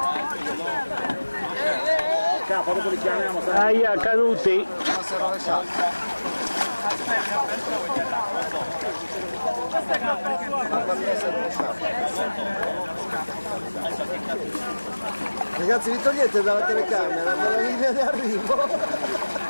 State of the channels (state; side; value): inverted; both; correlation -1.00